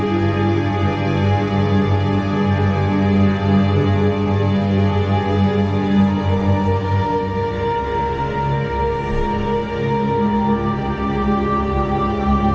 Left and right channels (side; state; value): both; identical; correlation 1.00